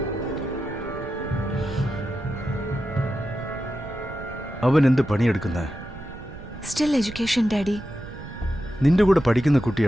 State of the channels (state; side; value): noise; right; rumble, 13 dB below the sound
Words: അവൻ എന്ത് പണിയെടുക്കുന്ന? Still education daddy. നിന്റെ കൂടെ പഠിക്കുന്ന